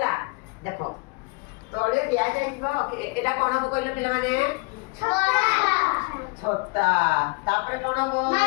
देखो तोड़े दिया जाइबा एटा कोन हो कहले पिला माने छोटा तापरे कोन हो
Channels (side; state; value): right; quieter; 27.8 dB